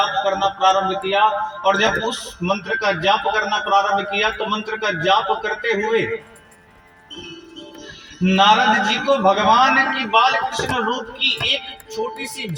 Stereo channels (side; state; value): both; identical; correlation 1.00